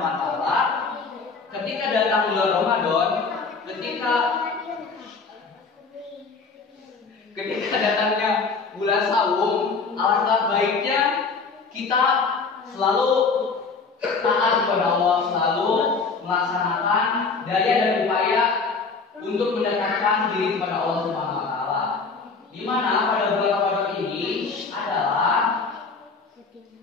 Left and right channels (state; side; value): quieter; right; 4.6 dB